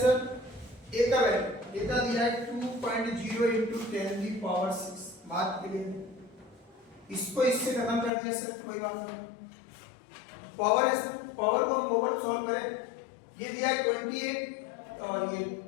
A का वैल्यू कितना दिया है? 2.0 into 10 की पावर 6। बात क्लियर? इसको इससे खत्म कर दिया सर, कोई बात नहीं। पावर है सर, पावर को हम ओवर सॉल्व करें। ये दिया है 28 और ये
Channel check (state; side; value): drops out; right; at 8.1 s